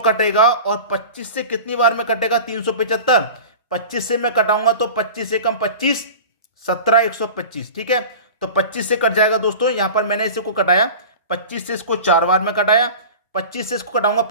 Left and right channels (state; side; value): inverted; both; correlation -0.36